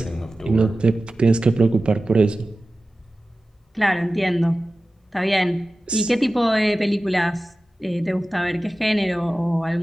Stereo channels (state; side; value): normal; both; correlation 0.96